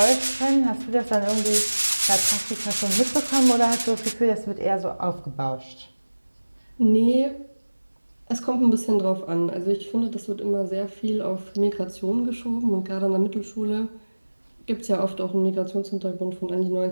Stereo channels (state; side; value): inverted; both; correlation -1.00